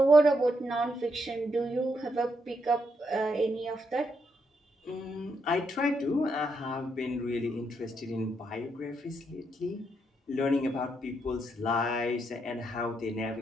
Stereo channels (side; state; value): both; normal; correlation 0.78